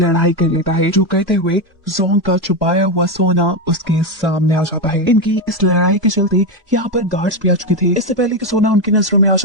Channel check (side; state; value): both; normal; correlation 0.10